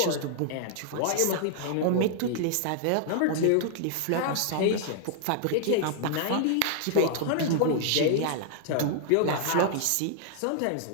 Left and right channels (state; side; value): different; both; correlation -0.01